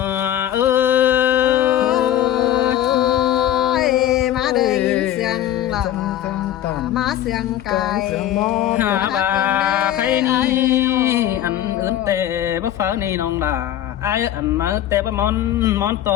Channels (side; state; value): right; quieter; 11.9 dB